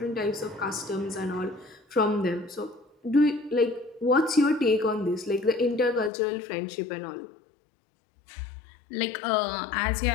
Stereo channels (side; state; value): right; drops out; at 6.1 s